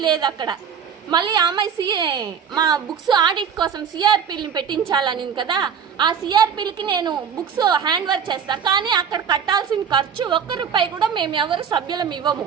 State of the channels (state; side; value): quieter; left; 7.4 dB